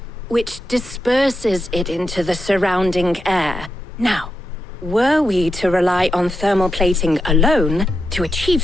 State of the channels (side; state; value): both; normal; correlation 0.86